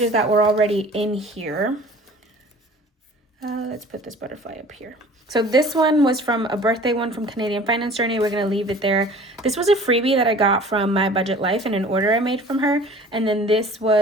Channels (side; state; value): both; normal; correlation 0.46